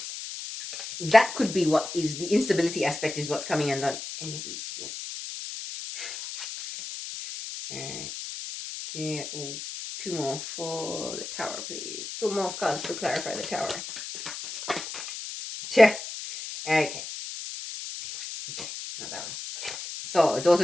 that could be what is the instability aspect is what's coming undone. Any of these? No. Okay. Oh, two more for the tower, please. Two more cards to clarify the tower. Okay. Okay, not that one. So,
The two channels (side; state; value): left; noise; hiss, 8 dB below the sound